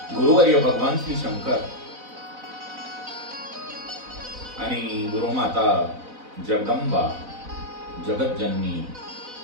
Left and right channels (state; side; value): late; left; 4.0 ms